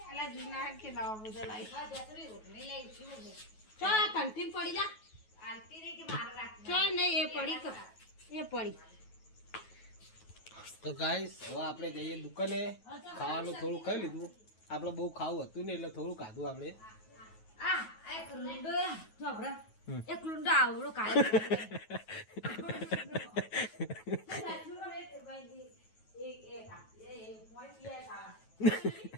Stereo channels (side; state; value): right; late; 9.3 ms